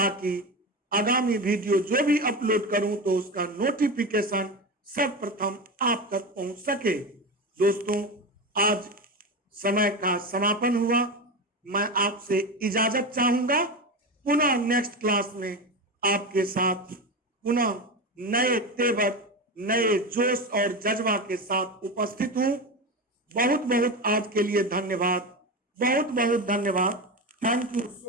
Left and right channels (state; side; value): normal; both; correlation 0.21